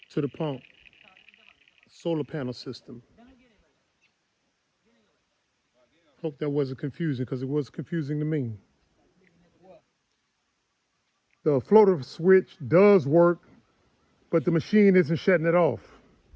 to the pump solar panel system. Hope that wasn't confusing because it was confusing to me. The floater switch does work, but the machine isn't shutting it off.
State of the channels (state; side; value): identical; both; correlation 1.00